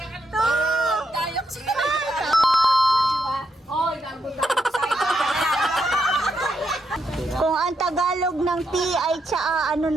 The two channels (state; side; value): normal; both; correlation 0.80